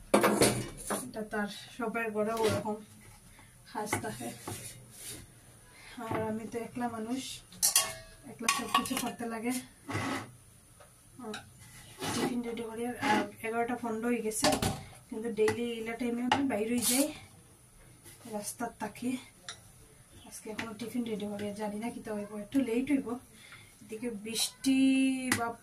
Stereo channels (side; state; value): both; identical; correlation 1.00